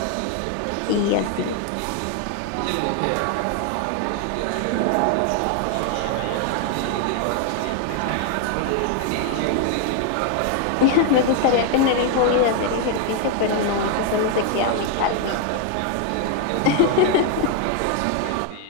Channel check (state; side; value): different; both; correlation 0.01